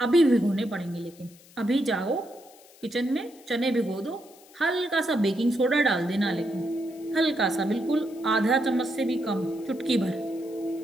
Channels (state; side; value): noise; left; hiss, 25 dB below the sound